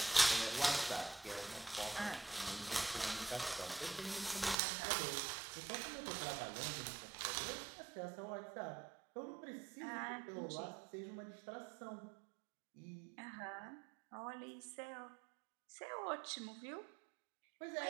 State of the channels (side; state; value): left; drops out; at 4.5 s